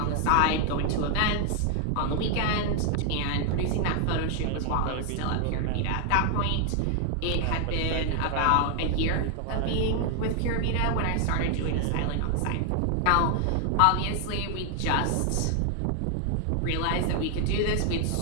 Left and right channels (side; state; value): both; different; correlation 0.00